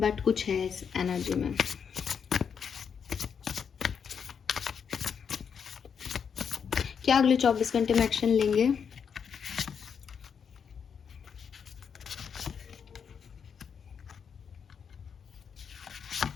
बट कुछ है इस एनर्जी में। क्या अगले 24 घंटे में एक्शन लेंगे?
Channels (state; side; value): quieter; right; 6.9 dB